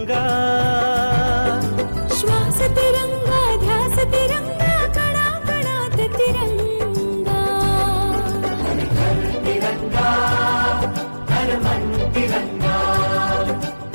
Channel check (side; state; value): both; inverted; correlation -1.00